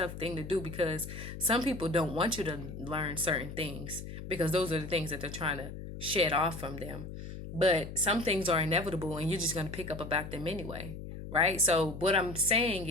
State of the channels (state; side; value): noise; left; hum, 10 dB below the sound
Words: thing to do because some people don't want you to learn certain things because those are the things that they're trying to shed off from them. But some things are inevitable and you're just going to pick up about them anyway, right? So what I'm saying